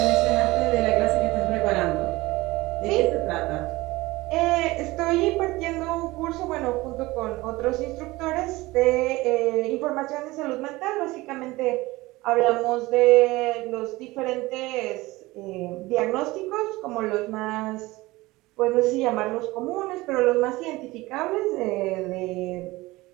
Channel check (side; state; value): left; quieter; 20.2 dB